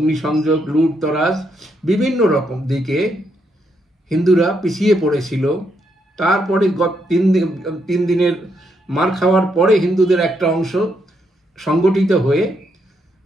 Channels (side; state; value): both; normal; correlation 0.78